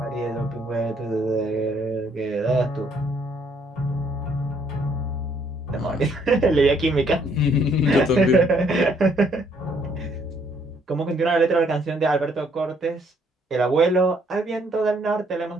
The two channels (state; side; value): normal; both; correlation 0.67